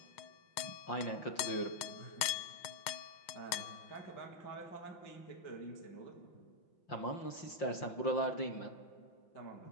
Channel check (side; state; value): right; late; 5.7 ms